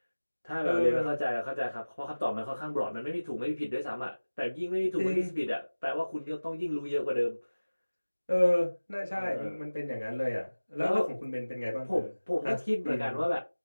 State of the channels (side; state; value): both; inverted; correlation -1.00